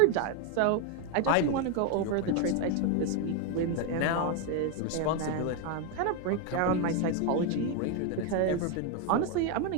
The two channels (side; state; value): both; different; correlation 0.01